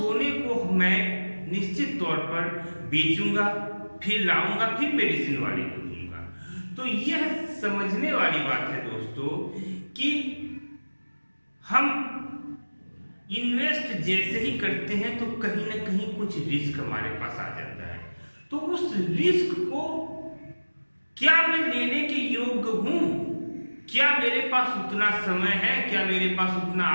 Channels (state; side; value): inverted; both; correlation -1.00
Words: को मैं निश्चित तौर पर बेचूंगा, फिर लाऊंगा, फिर मेडिसिन वाले को दूंगा। तो यह समझने वाली बात है दोस्तों कि हम इन्वेस्ट जैसे ही करते हैं तो कहीं ना कहीं कुछ रिस्क हमारे पास आ जाता है। तो उस रिस्क को क्या मैं लेने के योग्य हूं, क्या मेरे पास उतना समय है, क्या मेरे पास उतना